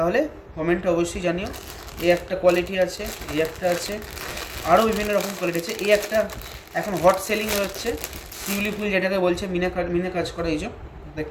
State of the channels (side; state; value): both; identical; correlation 1.00